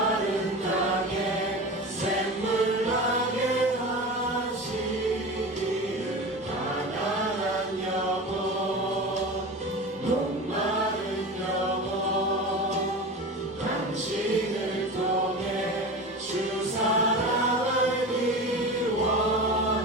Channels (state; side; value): normal; both; correlation 0.30